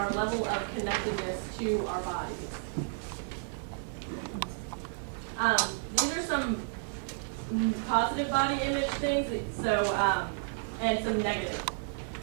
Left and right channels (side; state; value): left; silent; digital silence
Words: level of connectedness to our bodies. These are some positive body image things, and some negative.